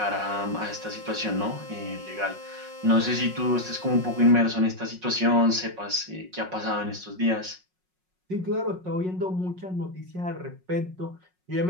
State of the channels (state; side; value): late; left; 5.5 ms